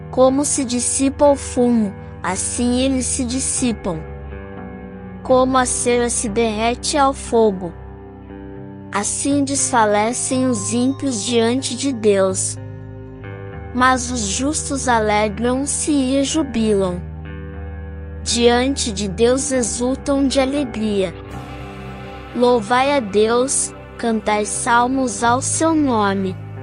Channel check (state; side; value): identical; both; correlation 1.00